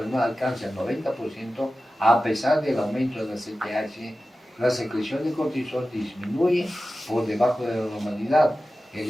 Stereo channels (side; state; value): both; normal; correlation 0.95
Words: alcanza el 90%, a pesar del aumento de la CTH, la secreción de cortisol disminuye por debajo de la normalidad. El